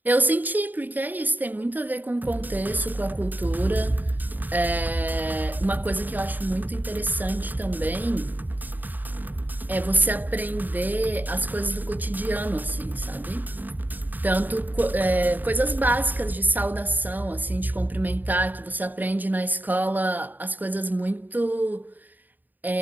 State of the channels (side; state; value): left; late; 0.087 ms